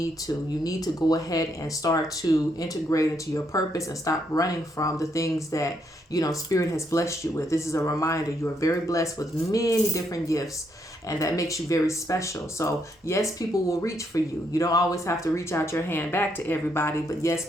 to. You need to go ahead and start to integrate into your purpose and stop running from the things that Spirit has blessed you with. This is a reminder. You are very blessed with many different gifts, and that makes you very special. So yes, people will reach for you. You don't always have to reach out your hand back to everybody, but yes,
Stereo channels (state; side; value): normal; both; correlation 0.75